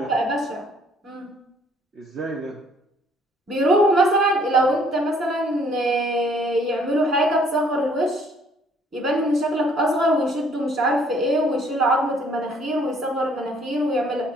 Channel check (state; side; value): normal; both; correlation 0.61